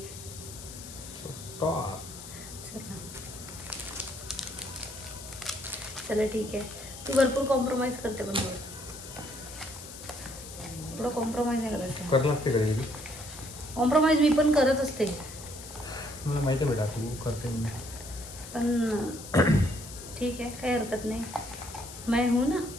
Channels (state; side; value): noise; left; hiss, 13 dB below the sound